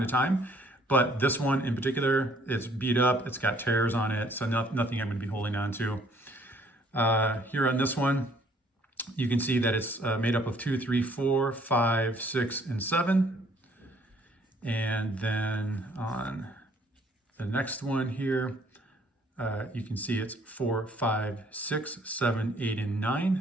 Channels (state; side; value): normal; both; correlation 0.61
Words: time, but this one in particular, it's beat up, it's got tears on it, so nothing I'm going to be holding on to. Here on this one, you can see that it's made up of 2, 3, 4, 5, 6, and 7. And then on the next one here, you can see it's 4, 5, 6, 7, 8, and